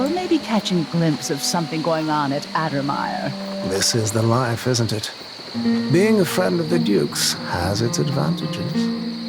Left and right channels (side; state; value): both; identical; correlation 1.00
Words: maybe catching a glimpse of something going on at Addermire. This is the life, isn't it? Being a friend of the Duke's has its advantages.